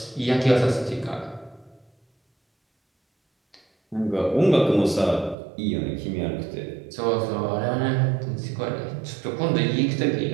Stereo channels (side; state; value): left; drops out; at 5.4 s